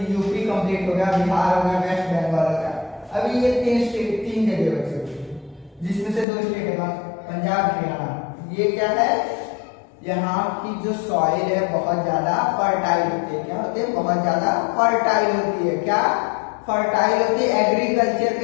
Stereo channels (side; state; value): right; drops out; at 6.2 s